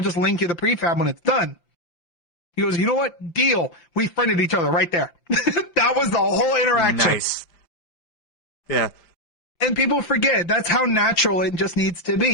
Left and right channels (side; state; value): right; late; 5.8 ms